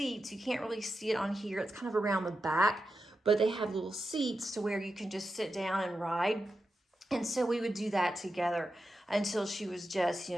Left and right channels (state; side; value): normal; both; correlation 0.89